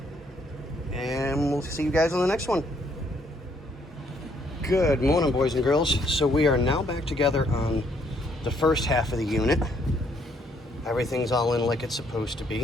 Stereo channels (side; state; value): both; normal; correlation 0.69